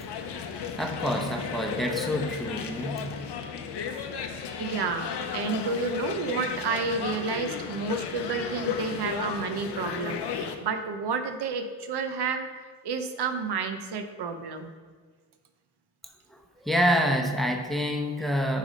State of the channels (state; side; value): normal; both; correlation 0.31